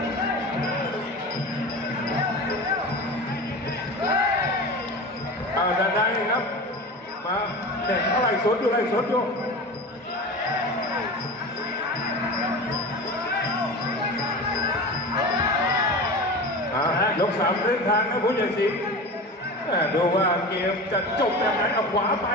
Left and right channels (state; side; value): normal; both; correlation 0.30